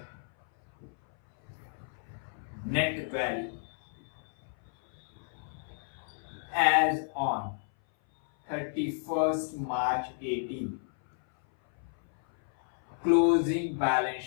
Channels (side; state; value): right; silent; 57 dB below the other